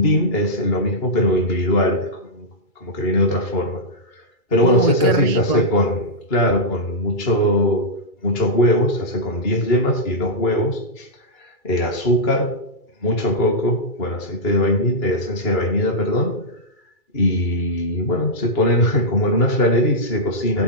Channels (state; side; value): late; right; 2.3 ms